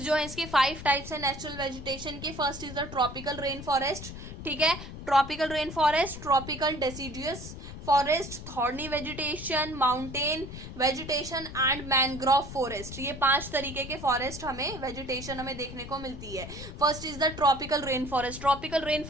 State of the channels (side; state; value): left; noise; rumble, 11 dB below the sound